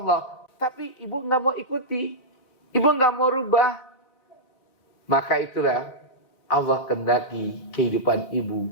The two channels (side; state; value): right; late; 4.0 ms